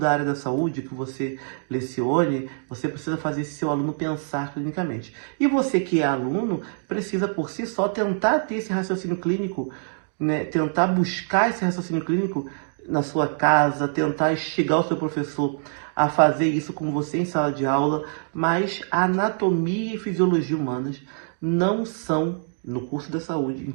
área da saúde que você lecione. Você precisa fazer esse seu aluno pensar clinicamente. E você que é aluno precisa por si só tentar ter esse raciocínio clínico, né? Tentar buscar esse raciocínio clínico na sua casa, tentar instigar o seu professor a fazer isso com você em sala de aula, mas a anatomia e fisiologia humanas não são no curso da saúde, em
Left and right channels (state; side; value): silent; left; digital silence